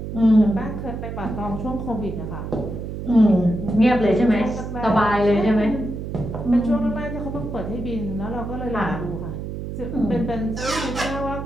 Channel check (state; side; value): noise; right; hum, 7 dB below the sound